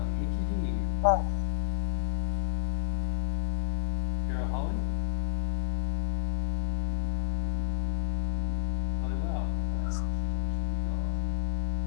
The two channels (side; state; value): right; silent; digital silence